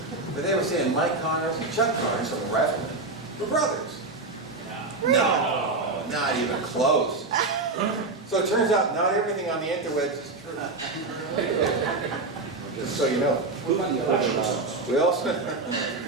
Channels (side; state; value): left; quieter; 3.4 dB